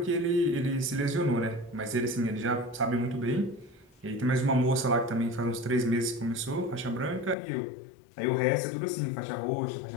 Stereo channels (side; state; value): right; drops out; at 7.4 s